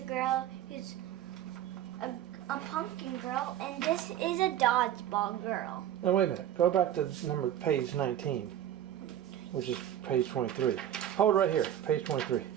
girl who's a pumpkin girl, and this is a dodgeball girl. Now wait a minute. Go back to page 19, which is page 23. Hold right here, page 23.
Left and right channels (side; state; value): left; quieter; 11.1 dB